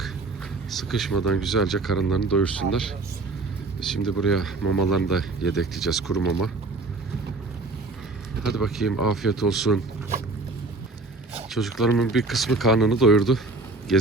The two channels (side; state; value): left; quieter; 3.4 dB